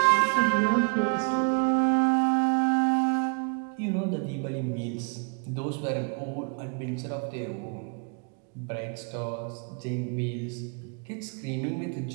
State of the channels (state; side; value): quieter; left; 39.3 dB